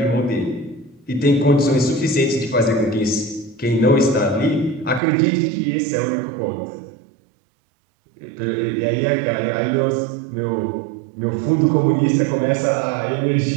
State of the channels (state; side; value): drops out; left; at 5.0 s